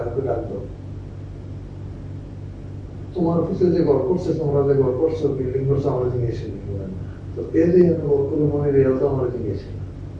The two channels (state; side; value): identical; both; correlation 1.00